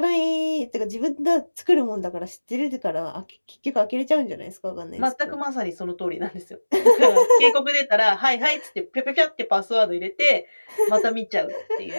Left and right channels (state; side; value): inverted; both; correlation -1.00